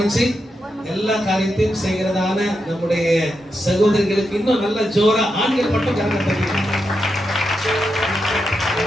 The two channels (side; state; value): both; normal; correlation 0.86